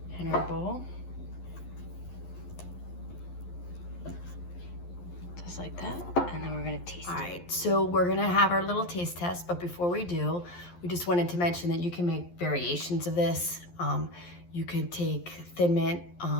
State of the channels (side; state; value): right; late; 11 ms